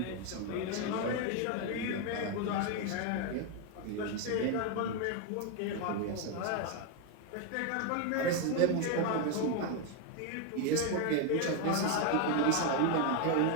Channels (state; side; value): different; both; correlation 0.01